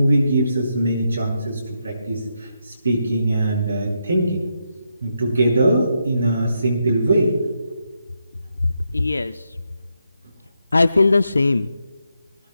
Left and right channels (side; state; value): both; inverted; correlation -0.82